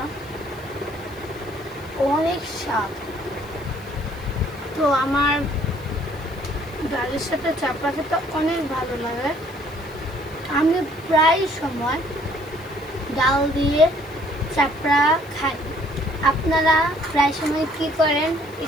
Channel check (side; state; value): left; noise; hiss, 25 dB below the sound